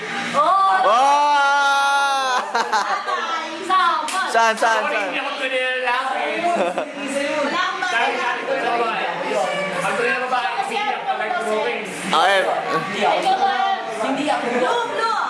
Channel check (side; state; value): both; identical; correlation 1.00